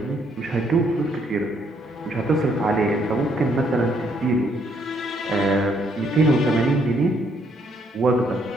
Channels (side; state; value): both; normal; correlation 0.70